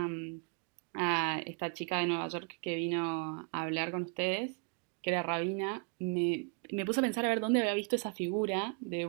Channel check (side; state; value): left; quieter; 37.3 dB